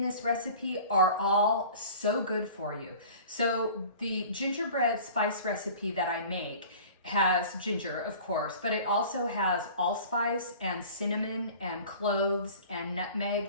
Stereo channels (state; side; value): inverted; both; correlation -0.43